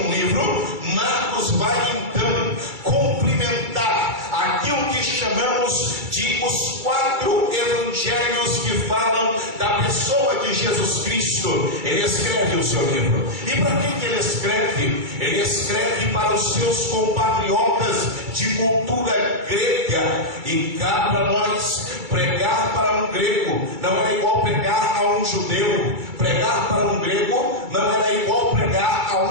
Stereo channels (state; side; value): late; left; 2.3 ms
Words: livro, Marcos vai então complementar aquilo que chamamos de os 4 evangelhos que falam da pessoa de Jesus Cristo. Ele escreve o seu livro. E para quem que ele escreve? Ele escreve para os seus compatriotas de cultura grega. E cá para nós, pregar para um grego não era igual pregar a um judeu. Pregar para um grego não era igual pregar